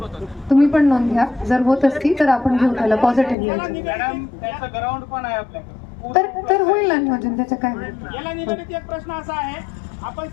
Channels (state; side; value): drops out; right; at 3.4 s